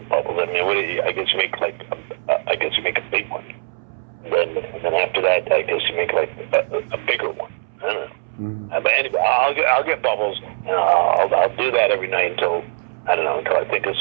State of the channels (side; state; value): left; silent; 65 dB below the other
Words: bubbles? I mean, I guess you make a big one. And then after that, I guess you make like a bigger one. I don't know. Mm-hmm. But anyway, I'll get bubbles, and I'll do that every night until I think of